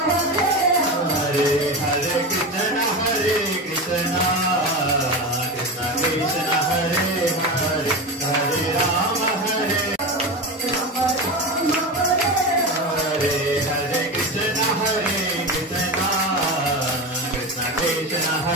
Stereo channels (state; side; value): normal; both; correlation 0.22